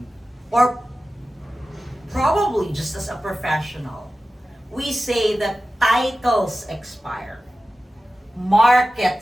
Or probably just as a professional, we say that titles expire,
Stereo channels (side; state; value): both; normal; correlation 0.94